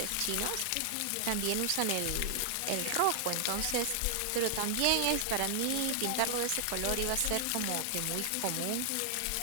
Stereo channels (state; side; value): different; both; correlation 0.00